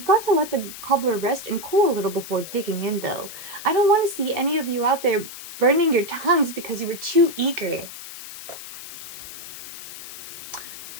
got to let the cobbler rest and cool a little before digging in though. I don't want to see any of you out there burning your tongues because you were too eager.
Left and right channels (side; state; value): left; noise; hiss, 12 dB below the sound